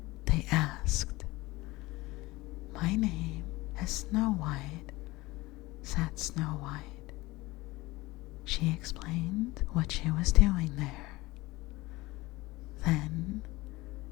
they asked. "My name is Snow White," said Snow White. She explained what she was doing there. Then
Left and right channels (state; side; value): quieter; right; 20.5 dB